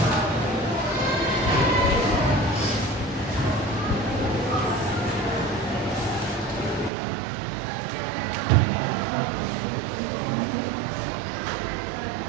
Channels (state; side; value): drops out; left; at 6.9 s